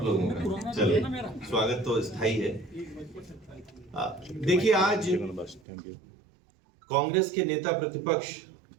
लोगों का चलिए स्वागत तो स्थायी है। देखिए, आज कांग्रेस के नेता प्रतिपक्ष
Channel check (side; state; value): left; drops out; at 5.6 s